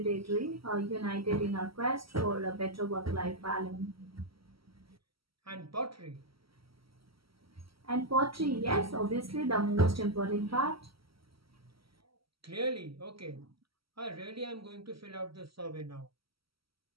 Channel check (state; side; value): late; left; 0.75 ms